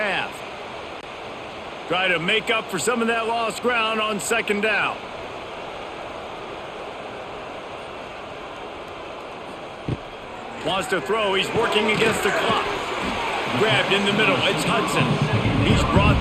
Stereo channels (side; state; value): both; identical; correlation 1.00